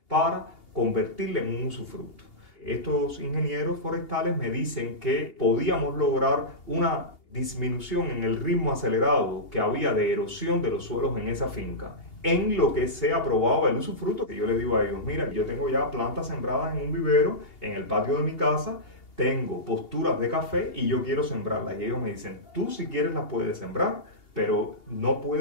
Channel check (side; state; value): right; late; 2.8 ms